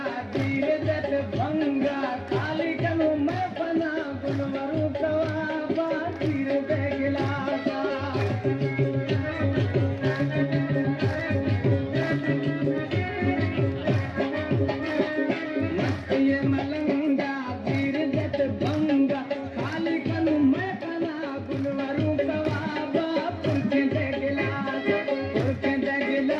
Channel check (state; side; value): identical; both; correlation 1.00